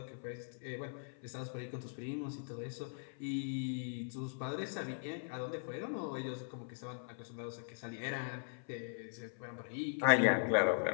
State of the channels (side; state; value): right; silent; 51 dB below the other